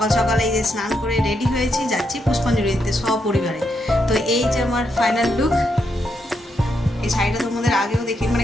সকালে এই যে স্নান করে রেডি হয়েছি, যাচ্ছি পুষ্পাঞ্জলি দিতে সপরিবারে। তো এই যে আমার ফাইনাল লুক। এই শাড়িটা তোমাদের আগেও দেখি,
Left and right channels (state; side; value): normal; both; correlation 0.80